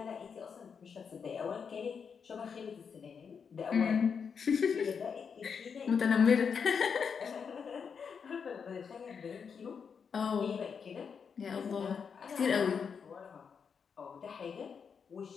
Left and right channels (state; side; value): quieter; right; 6.4 dB